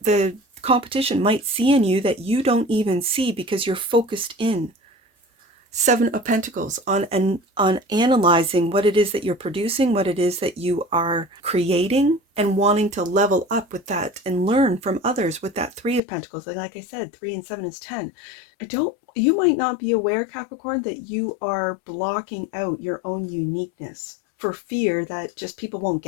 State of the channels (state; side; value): drops out; right; at 16.0 s